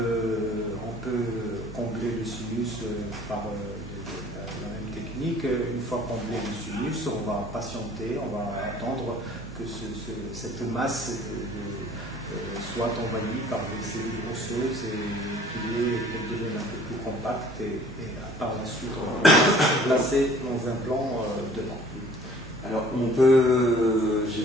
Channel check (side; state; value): right; noise; hum, 15 dB below the sound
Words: peut combler le sinus par la même technique. Une fois comblé le sinus, on va patienter, on va attendre que cette masse soit envahie par des cellules osseuses et qu'elle devienne un peu plus compacte et par la suite on va placer nos implants dedans. Alors j'ai